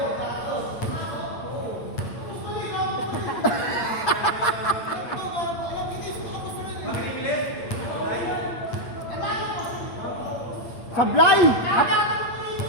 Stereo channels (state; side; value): late; right; 8.4 ms